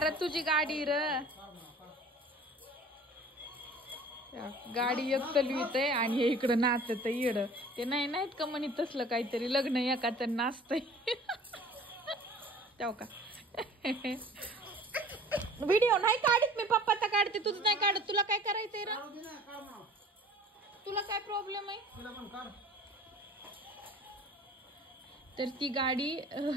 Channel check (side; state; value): both; normal; correlation 0.47